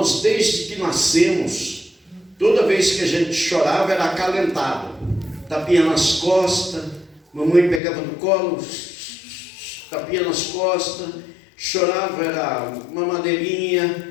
desde que nascemos, toda vez que a gente chorava era acalentado, tapinha nas costas, mamãe pegava no colo, tapinha nas costas, chorava, era uma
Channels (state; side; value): drops out; right; at 7.8 s